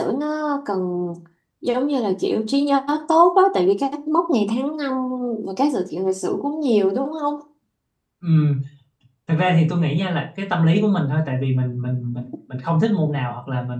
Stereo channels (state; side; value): identical; both; correlation 1.00